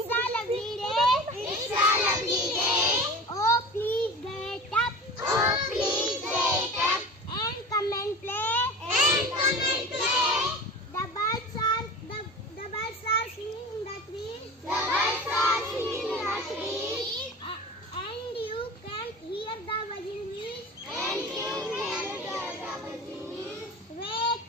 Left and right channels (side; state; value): both; normal; correlation 0.35